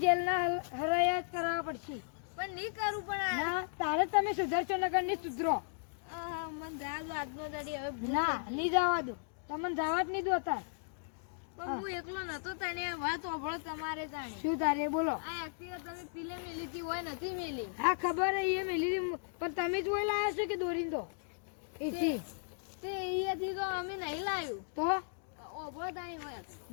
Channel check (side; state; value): right; silent; digital silence